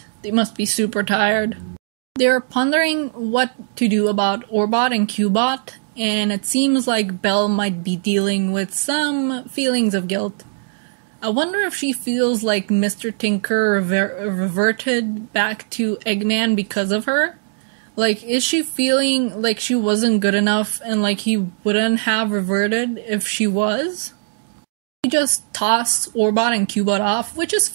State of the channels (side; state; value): left; silent; digital silence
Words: They must be super tired. They're pondering what to do about Orbot and Cubot, and it seems like Belle might be dealing with some feelings of guilt. I wonder if she feels like Mr. Tinker reverted back to Eggman because of her? Like, is she feeling like she wasn't good enough and like he wouldn't have reverted if she was? He just tossed Orbot and Cubot off, which is